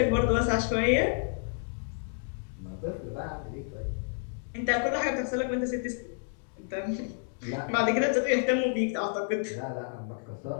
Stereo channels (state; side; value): silent; right; digital silence